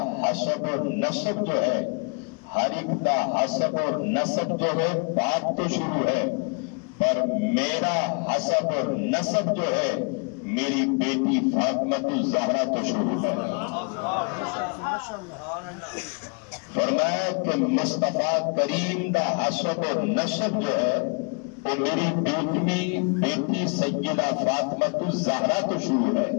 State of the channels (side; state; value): right; quieter; 36.4 dB